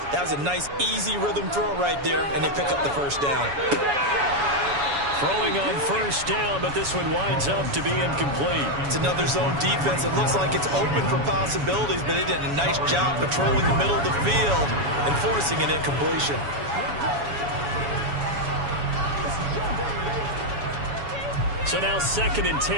That was a nice, easy rhythm throw right there, and they pick up the first down. Throwing on first down, but this one winds up to be incomplete. It's another zone defense. It looks like it's open for possibilities, but they did a nice job patrolling the middle of the field and forcing an incompletion. So now 2nd and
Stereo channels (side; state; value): left; late; 7.1 ms